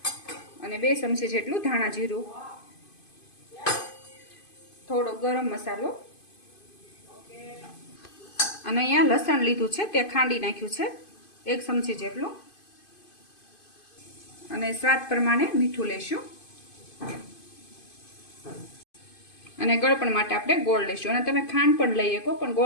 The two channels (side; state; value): right; late; 2.5 ms